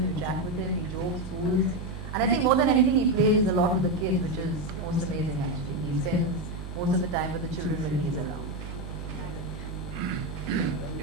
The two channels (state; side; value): noise; right; hum, 9 dB below the sound